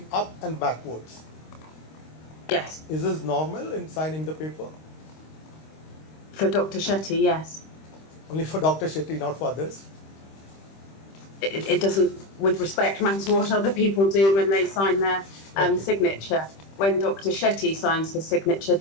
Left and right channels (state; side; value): late; right; 26 ms